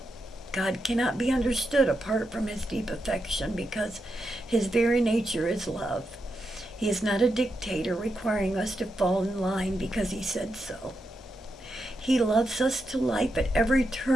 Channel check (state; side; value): normal; both; correlation 0.85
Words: God cannot be understood apart from His deep affection because His very nature is love. He is not a dictator requiring us to fall in line because He said so. He loves us to life at every